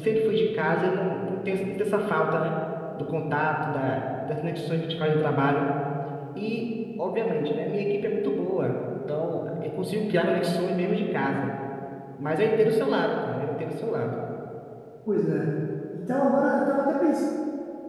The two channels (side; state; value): both; identical; correlation 1.00